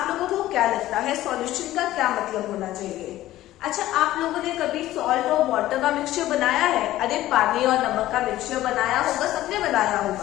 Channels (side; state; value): right; quieter; 14.9 dB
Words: लोगों को क्या लगता है सॉल्यूशन का क्या मतलब होना चाहिए? अच्छा, आप लोगों ने कभी सॉल्ट और वाटर का मिक्सचर बनाया है? अरे पानी और नमक का मिक्सचर बनाया होगा, सबने बनाया